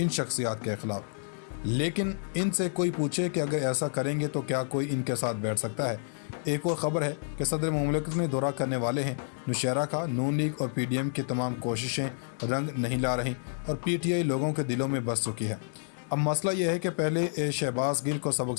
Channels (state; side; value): silent; right; digital silence